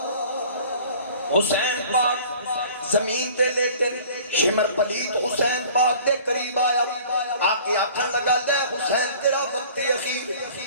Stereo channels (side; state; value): both; inverted; correlation -0.47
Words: حسین پاک زمین تے لیٹے، شمر پلیت حسین پاک دے قریب آیا، آکے آکھن لگا لے حسین تیرا وقت اخیر،